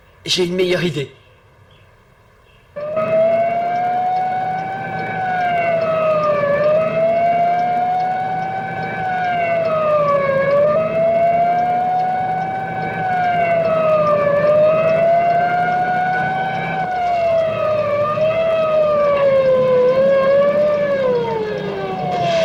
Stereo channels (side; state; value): both; identical; correlation 1.00